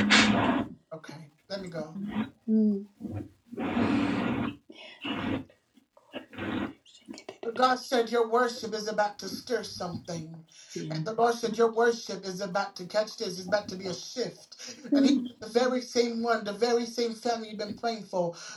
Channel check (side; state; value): both; identical; correlation 1.00